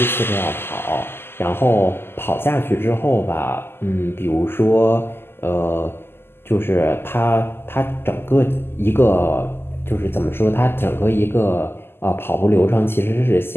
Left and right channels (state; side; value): late; right; 0.11 ms